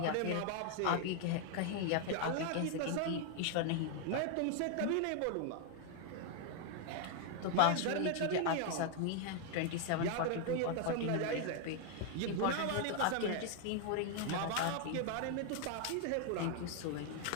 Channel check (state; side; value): different; both; correlation 0.00